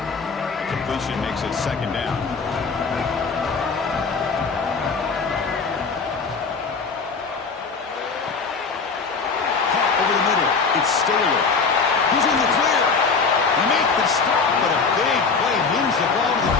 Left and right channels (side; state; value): right; quieter; 4.9 dB